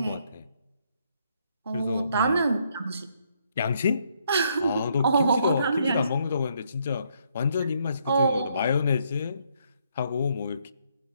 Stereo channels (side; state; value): both; inverted; correlation -0.72